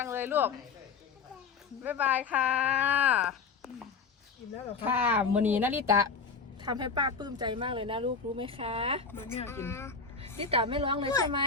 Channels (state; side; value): quieter; right; 5.1 dB